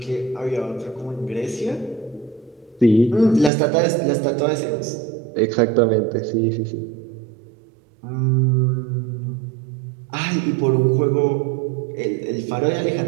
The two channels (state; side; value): drops out; left; at 3.5 s